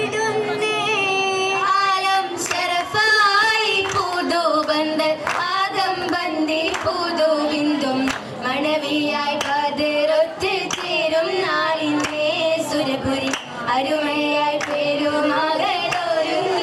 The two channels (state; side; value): identical; both; correlation 1.00